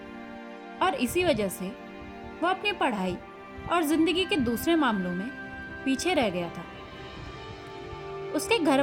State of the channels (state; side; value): identical; both; correlation 1.00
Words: और इसी वजह से वह अपनी पढ़ाई और जिंदगी के दूसरे मामलों में पीछे रह गया था। उसके घर